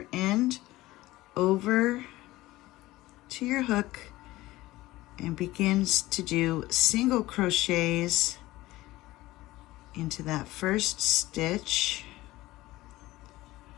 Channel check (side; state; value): right; quieter; 17.8 dB